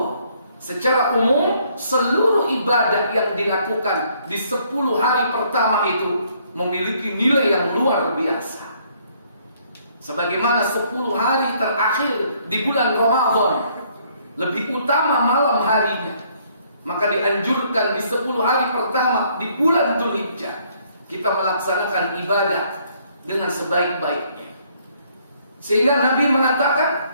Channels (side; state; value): both; inverted; correlation -0.66